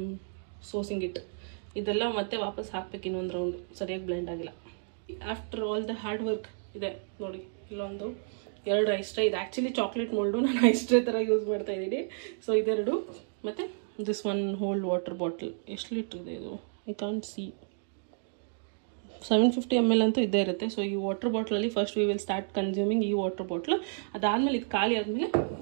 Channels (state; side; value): silent; left; digital silence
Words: ಸೋಸಿಂಗ್ ಇಟ್. ಇದೆಲ್ಲ ಮತ್ತೆ ವಾಪಸ್ ಹಾಕ್ಬೇಕು ಇನ್ನೊಂದು ರೌಂಡು. ಸರಿಯಾಗಿ ಬ್ಲೆಂಡ್ ಆಗಿಲ್ಲ. After all the hard work ಇದೆ ನೋಡಿ. ಇಲ್ಲೊಂದು 2 ಐಸ್ ಟ್ರೇ. ಇದು ಆ್ಯಕ್ಚುಲಿ ಚಾಕ್ಲೇಟ್ ಮೋಲ್ಡು, ನಾನು ಐಸ್ ಟ್ರೇ ಥರ ಯೂಸ್ ಮಾಡ್ತಾಯಿದ್ದೀನಿ. ಸೊ ಇದೆರಡು ಮತ್ತು ದಿಸ್ 1 ಹೋಲ್ ವಾಟರ್ ಬಾಟಲ್. ಎಷ್ಟು ಲೀಟ್ರ್ ಇದೆ ಇದು? I can't see. 750 ml ಅಂತೂ ಇದ್ದೇ ಇರುತ್ತೆ. ಸೊ ಈ ವಾಟರ್ ಬಾಟ್ಲಲ್ಲಿ first we will start consuming ಈ ವಾಟರ್ ಬಾಟ್ಲು. ಅದಾದಮೇಲೆ ಇದು ಖಾಲಿ ಆದಮೇಲೆ